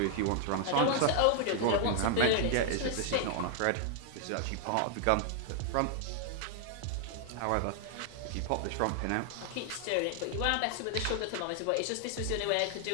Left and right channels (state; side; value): different; both; correlation 0.00